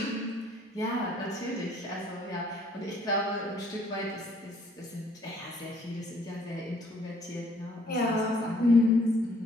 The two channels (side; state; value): both; normal; correlation 0.62